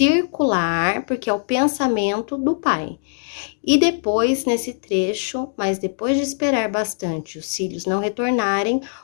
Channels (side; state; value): right; silent; digital silence